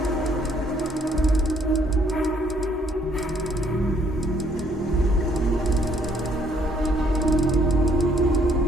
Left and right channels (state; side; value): normal; both; correlation 0.66